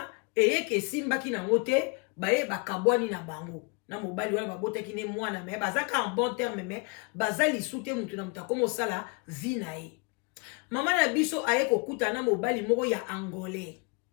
eyeke simbaki na ngote ba ye bakabwani na bango na mobali wana babotaki ne mwana me bazaka en bon terme me bazali sute mutu na mutako mosala vie na ye mama na biso aye kokuta na mobali moko ya angolais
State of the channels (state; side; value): quieter; right; 31.8 dB